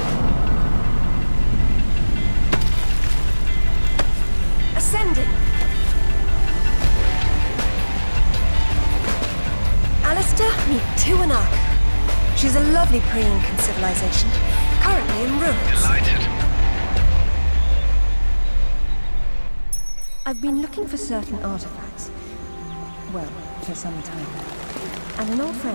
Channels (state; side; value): inverted; both; correlation -1.00